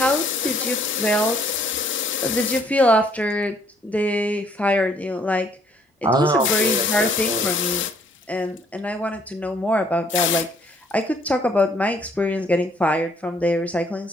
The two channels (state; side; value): normal; both; correlation 0.64